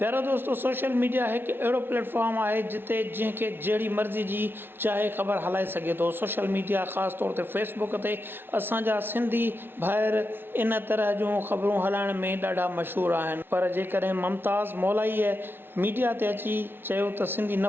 दोस्तों, सोशल मीडिया हिकु अहिड़ो प्लेटफॉर्म आहे जिते जंहिंखे जहिड़ी मर्ज़ी जी चाहे ख़बर हलाए सघे थो। सोशल मीडिया ख़ासि तौर ते फेसबुक ते असांजा सिंधी भाइर इन तरह जूं ख़बरूं हलाइण में ॾाढा मशहूरु आहिनि। पर जेकॾहिं मुमताज़ मौलाईअ मीडिया ते अची चयो त सिंधी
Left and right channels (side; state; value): left; late; 0.11 ms